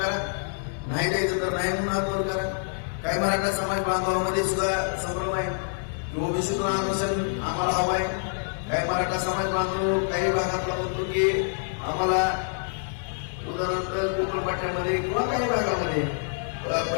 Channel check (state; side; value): silent; right; digital silence